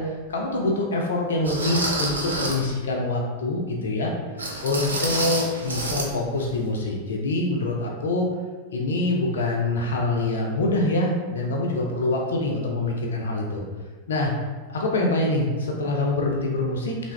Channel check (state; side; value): normal; both; correlation -0.15